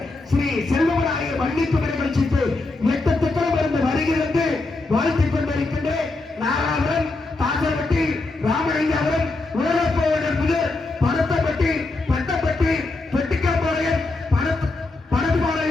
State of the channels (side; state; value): right; quieter; 3.2 dB